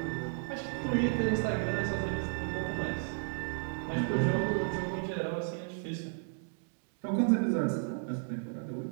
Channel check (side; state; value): left; silent; digital silence